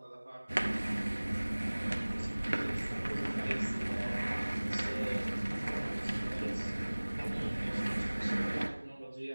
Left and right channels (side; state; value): both; inverted; correlation -1.00